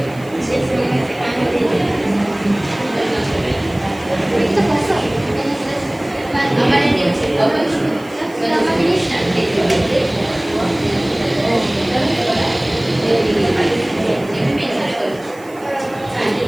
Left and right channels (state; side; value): noise; right; hiss, 25 dB below the sound